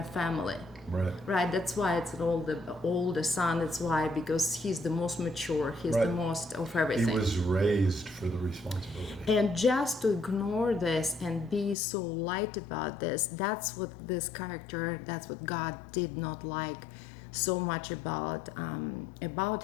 family. Right. That's why it's an older son. That's why, because he's the most mature. He's the most of everything. He was raised for the responsibility. And just to ignore this and be so light about this, that's what this character, that's what God did not like so much about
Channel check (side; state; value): right; drops out; at 11.8 s